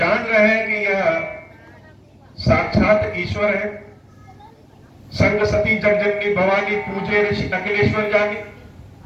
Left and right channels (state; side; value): identical; both; correlation 1.00